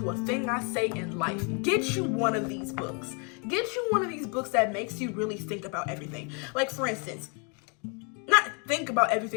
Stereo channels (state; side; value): quieter; right; 35.9 dB